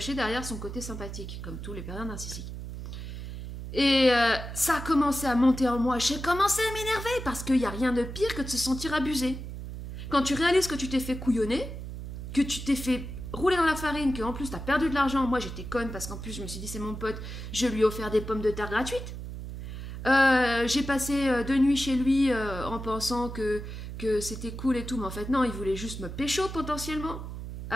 derrière son côté sympathique, comme tous les pervers narcissiques. Et ça a commencé à monter en moi. J'ai commencé à m'énerver parce qu'il n'y a rien de pire que de se sentir abusé. Quand tu réalises que tu t'es fait couillonner, que tu t'es fait rouler dans la farine, qu'en plus t'as perdu de l'argent. Moi j'étais conne parce qu'en plus je me suis dit c'est mon pote, je lui ai offert des pommes de terre gratuites. J'ai passé 2 nuits chez lui en pensant que c'était cool et tout, mais en fait non, il voulait juste me pécho potentiellement.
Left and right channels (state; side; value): noise; right; hum, 8 dB below the sound